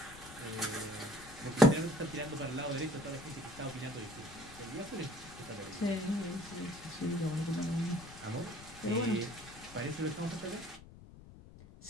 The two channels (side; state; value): left; noise; rumble, 17 dB below the sound